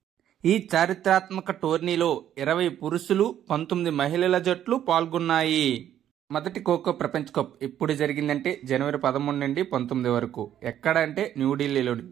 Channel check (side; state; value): left; quieter; 10.8 dB